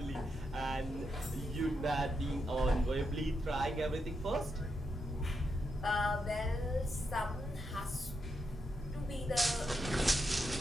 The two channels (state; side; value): normal; both; correlation 0.84